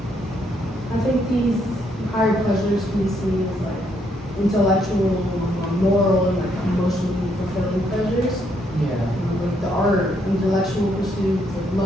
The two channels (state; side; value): normal; both; correlation 0.73